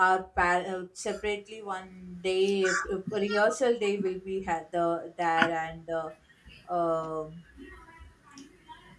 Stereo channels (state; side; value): identical; both; correlation 1.00